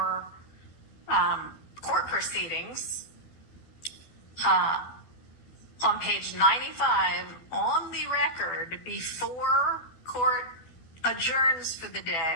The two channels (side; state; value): right; late; 12 ms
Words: court proceedings, on page 95, on the record, before court adjourns for the